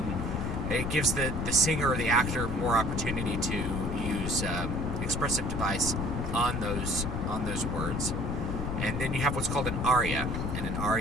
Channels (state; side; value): noise; left; rumble, 2 dB below the sound